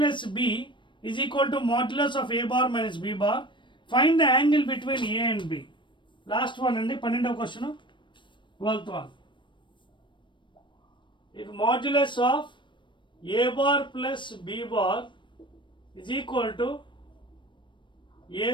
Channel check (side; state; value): right; late; 0.23 ms